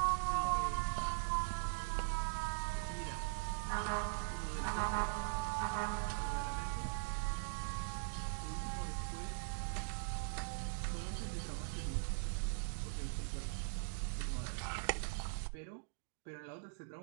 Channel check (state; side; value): silent; left; digital silence